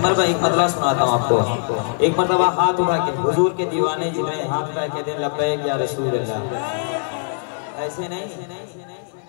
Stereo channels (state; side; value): silent; right; digital silence